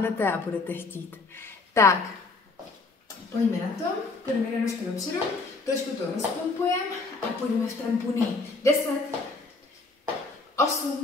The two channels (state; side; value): quieter; right; 3.8 dB